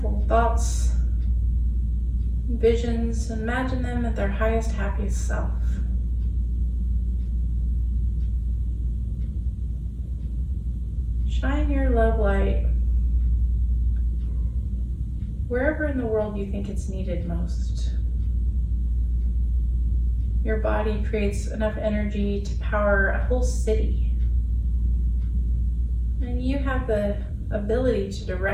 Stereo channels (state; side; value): identical; both; correlation 1.00